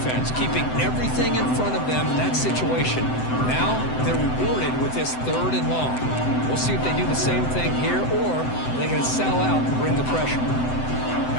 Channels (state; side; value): late; right; 7.9 ms